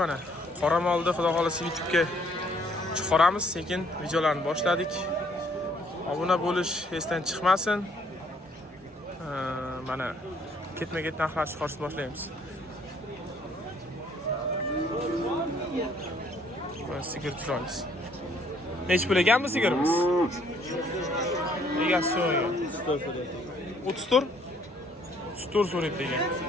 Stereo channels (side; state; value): both; normal; correlation 0.64